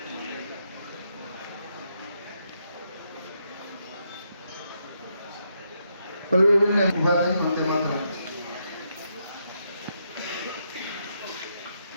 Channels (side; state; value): both; inverted; correlation -0.79